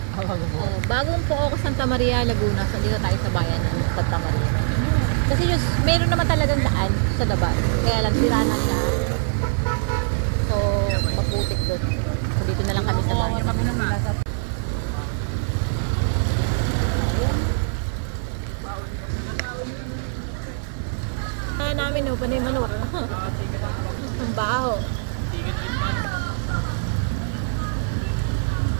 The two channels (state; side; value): silent; left; 60 dB below the other